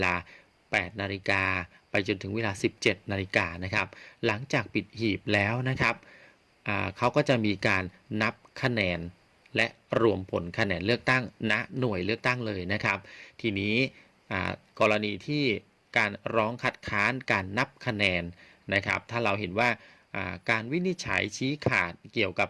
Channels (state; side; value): identical; both; correlation 1.00